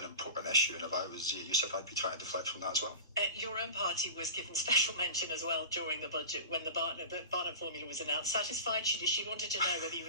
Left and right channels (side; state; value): both; inverted; correlation -0.33